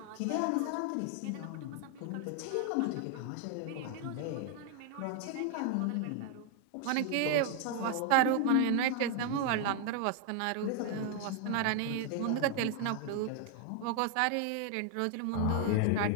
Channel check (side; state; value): both; different; correlation 0.00